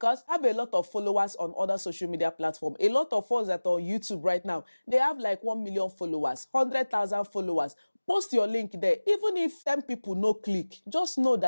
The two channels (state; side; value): inverted; both; correlation -1.00